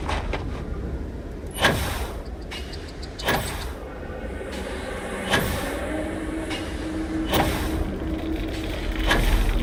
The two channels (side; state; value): both; identical; correlation 1.00